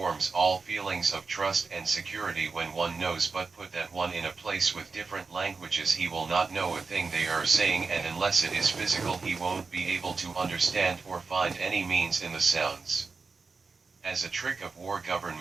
all feelings of trust and security when one knows, but put that one in a place with different languages, he will not know a thing they are saying, and unless it is physical he won't be able to understand or find any means in the sounds. As a trick of war,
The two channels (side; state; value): left; quieter; 4.4 dB